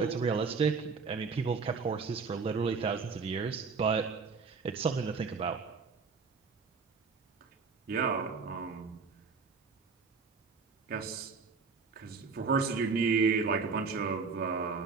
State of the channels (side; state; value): left; quieter; 4.9 dB